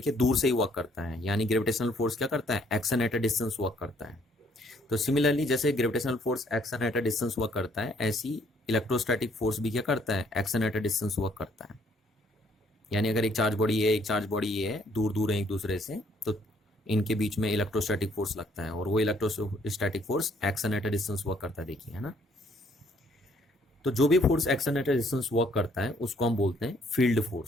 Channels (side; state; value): both; normal; correlation 0.65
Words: दूर से ही वर्क करता है, यानी ग्रेविटेशनल फोर्स क्या करता है, action at a distance work करता है। तो सिमिलरली जैसे gravitational force action at a distance work करता है, ऐसी इलेक्ट्रोस्टैटिक फोर्स भी क्या करता है, action at a distance work करता है। यानी अगर एक चार्ज बॉडी है, एक चार्ज बॉडी ये है, दूर दूर है एक दूसरे से, तो इनके बीच में इलेक्ट्रोस्टैटिक फोर्स लगता है और वो electrostatic force action at a distance work करता है, देखिए है ना। तो जो भी force action at a distance work करता है उसको हम बोलते हैं फील्ड